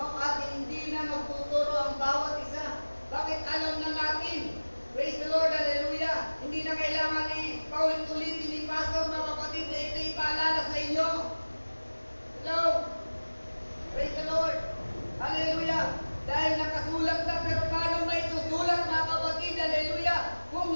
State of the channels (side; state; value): both; inverted; correlation -1.00